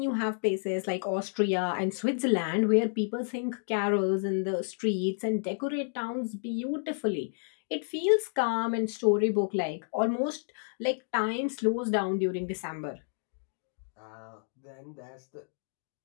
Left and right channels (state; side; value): silent; right; digital silence